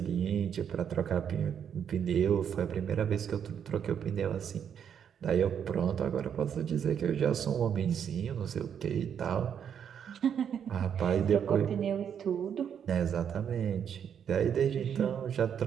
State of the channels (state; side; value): quieter; left; 8.2 dB